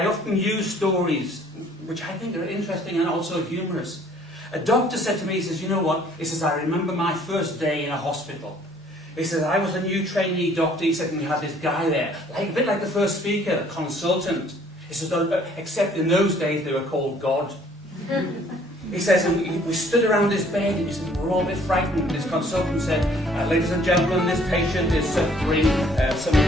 often use stories, which I think are interesting and also humorous. A doctor said to me, he says, you know what? He says, I remember my first day in a hospital. He says, I was a new trainee doctor. He said, and we had this guy there, a bit like the first speaker, a consultant. He says, except in those days they were called God. He says, and we stood around his bed, and he said, we're all a bit frightened. This consultant said, ladies and gentlemen, this patient is suffering some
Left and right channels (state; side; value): normal; both; correlation 0.59